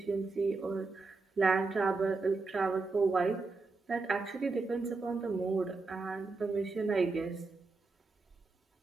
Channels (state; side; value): quieter; left; 3.8 dB